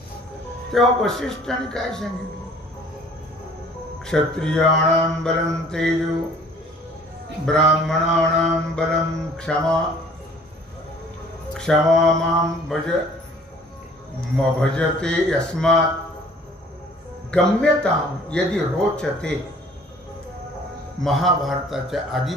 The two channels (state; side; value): normal; both; correlation 0.53